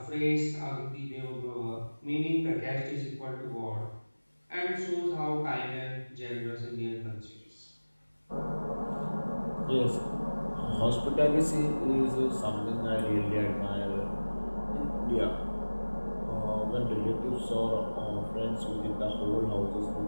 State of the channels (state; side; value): inverted; both; correlation -1.00